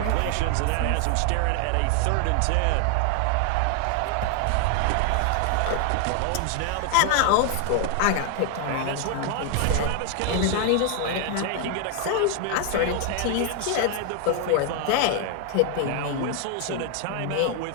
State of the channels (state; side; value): different; both; correlation 0.00